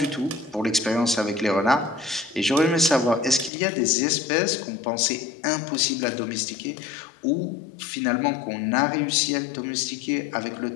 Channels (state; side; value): drops out; right; at 3.5 s